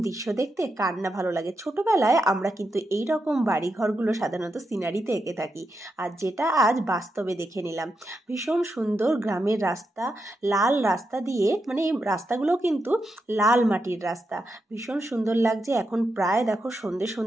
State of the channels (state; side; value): normal; both; correlation 0.85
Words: দৃশ্য দেখতে কার না ভালো লাগে। ছোটবেলায় আমরা কিন্তু এই রকম বাড়ি ঘরগুলো সাধারণত সিনারিতে এঁকে থাকি, আর যেটা আজ বাস্তবে দেখে নিলাম। ভীষণ সুন্দর গ্রামের রাস্তা, লাল রাস্তা দিয়ে, মানে এই রাস্তাগুলো কিন্তু লাল মাটির রাস্তা, ভীষণ সুন্দর লাগছে। এখন প্রায় দেখো সন্ধে